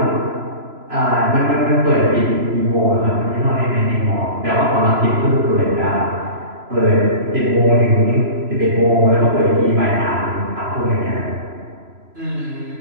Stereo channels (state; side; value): late; left; 3.0 ms